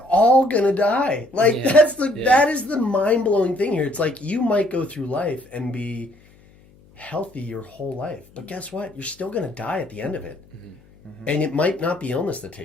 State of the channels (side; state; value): left; noise; hum, 28 dB below the sound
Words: all gonna die. Like Yeah. that is the mind-blowing thing here. It's like you might go through life and be healthy your whole life, but guess what? You're still gonna die at the end of it. And it might not be illness that